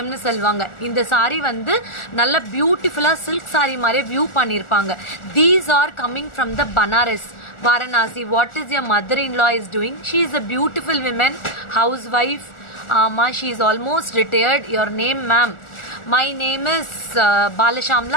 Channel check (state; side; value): late; right; 1.4 ms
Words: சொல்லுவாங்க இந்த சாரீ வந்து நல்ல பியூட்டிஃபுல்லாக சில்க் சாரீ மாதிரியே வியூ பண்ணியிருப்பாங்க these are coming from the Banaras Varanasi what is your mother in law is doing she is a beautiful women house wife she is almost retired your name ma'am my name is